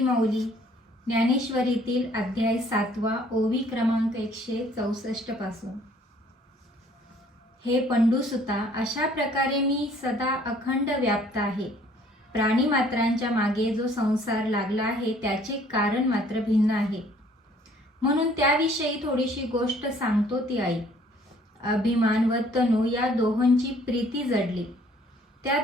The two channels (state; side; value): normal; both; correlation 0.59